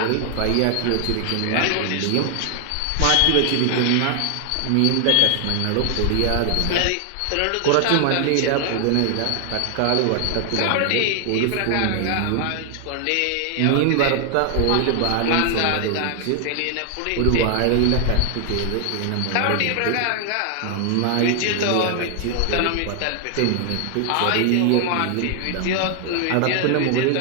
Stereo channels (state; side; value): different; both; correlation 0.00